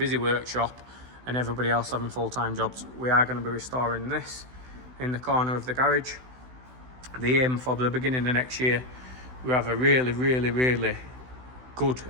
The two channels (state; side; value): late; left; 16 ms